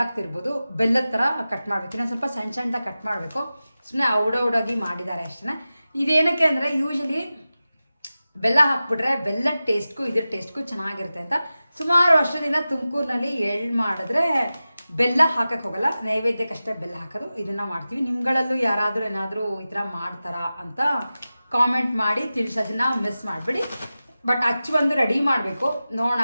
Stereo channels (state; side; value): inverted; both; correlation -0.95